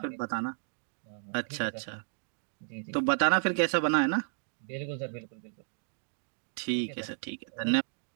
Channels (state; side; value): silent; left; digital silence